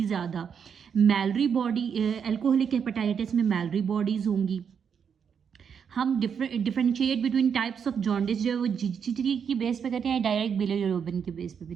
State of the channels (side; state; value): left; quieter; 7.1 dB